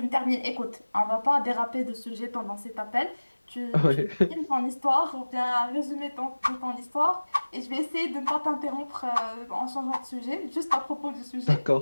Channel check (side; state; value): both; inverted; correlation -1.00